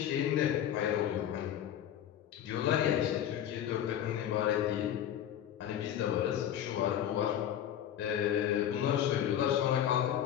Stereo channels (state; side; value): quieter; right; 10.5 dB